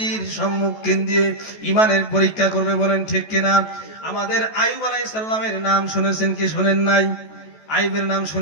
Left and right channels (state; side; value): late; right; 14 ms